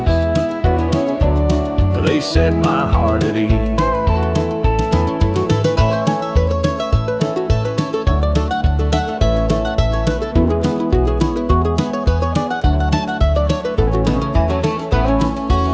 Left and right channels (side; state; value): both; identical; correlation 1.00